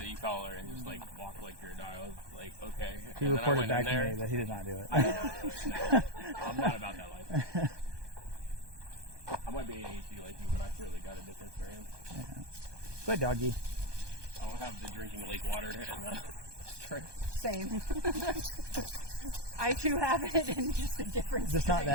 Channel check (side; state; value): left; late; 1.2 ms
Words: e-collar and just like walk like you're a dog. I was like, okay. He And then I reported went back in to there. me that he did not do it. I did not do it. No. I'm not about that life. I might be ADHD like you, but I clearly got a different experience. Good doggy. I don't have the drinking lake water and strength. Same. I too have it in just a different Just not strain.